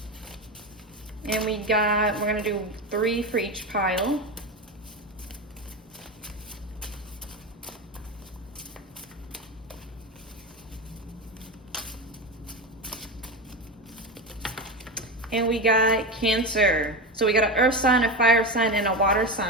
And we're gonna do 3 for each pile. And we got Cancer. So we got an earth sign, a fire sign, and a water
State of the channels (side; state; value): both; normal; correlation 0.19